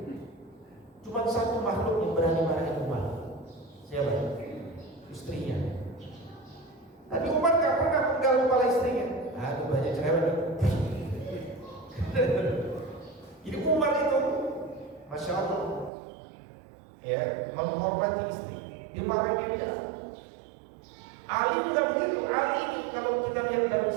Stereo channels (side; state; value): left; drops out; at 15.9 s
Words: Cuma satu makhluk yang berani marahin Umar. Siapa? Istrinya. Tapi Umar gak pernah penggal kepala istrinya. Aduh, banyak cerewet. Jadi Umar itu, masya Allah, ya, menghormati istri, dimarahin dia. Ali juga begitu. Ali ini kalau kita lihat dalam